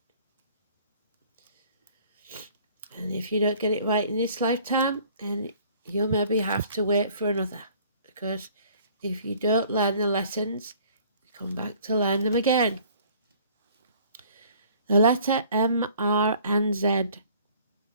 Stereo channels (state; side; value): inverted; both; correlation -0.55